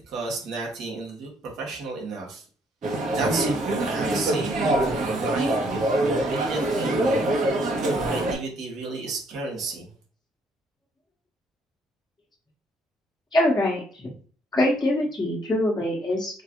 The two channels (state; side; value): normal; both; correlation 0.68